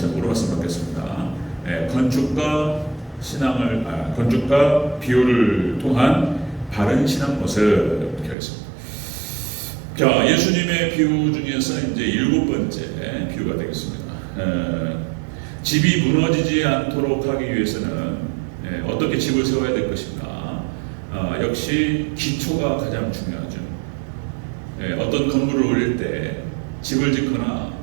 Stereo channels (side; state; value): left; drops out; at 8.3 s